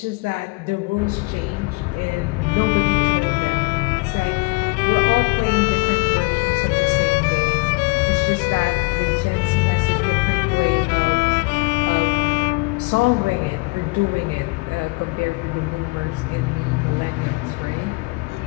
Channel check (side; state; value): right; quieter; 27.4 dB